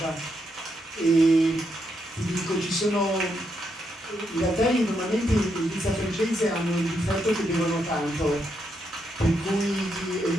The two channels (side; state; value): both; normal; correlation 0.80